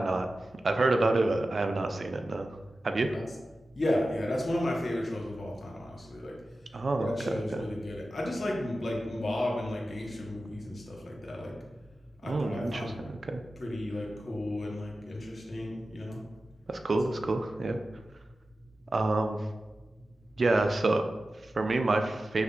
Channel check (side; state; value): both; normal; correlation 0.94